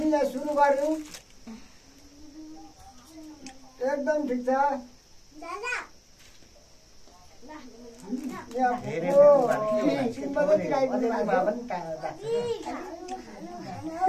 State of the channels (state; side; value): identical; both; correlation 1.00